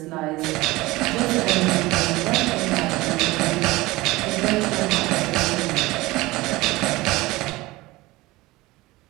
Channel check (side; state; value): left; quieter; 20.1 dB